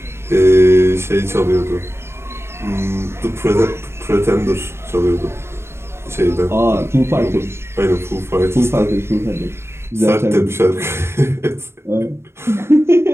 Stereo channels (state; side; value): late; left; 0.12 ms